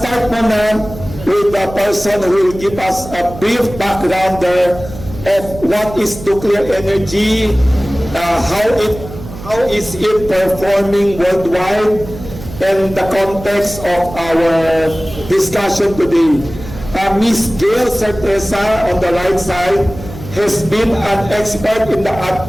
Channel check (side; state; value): right; noise; hum, 13 dB below the sound